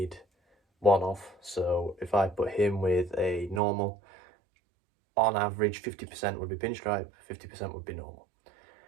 one of. So if I put him with a normal, on average 50% would be pinstripe, 50% would be normal.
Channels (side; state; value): left; drops out; at 3.6 s